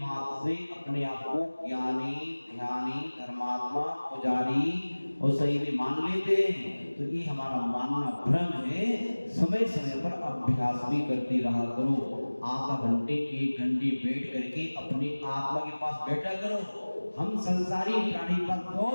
से अपने आप को ज्ञानी, ध्यानी, धर्मात्मा, पुजारी और सही में मान लेते हैं, तो ये हमारा मानना भ्रम है। समय समय पर अभ्यास भी करते रहा करो, आधा घंटे 1 घंटे बैठ करके अपनी आत्मा के पास बैठा करो। हम संसारी प्राणी पर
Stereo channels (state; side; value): inverted; both; correlation -1.00